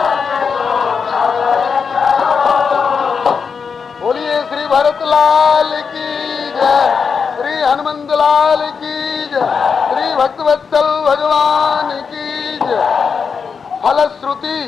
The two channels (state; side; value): quieter; right; 5.8 dB